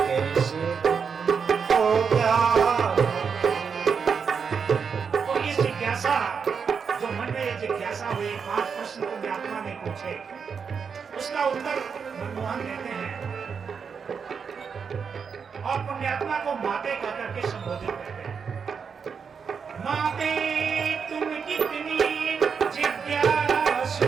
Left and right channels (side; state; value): left; quieter; 6.2 dB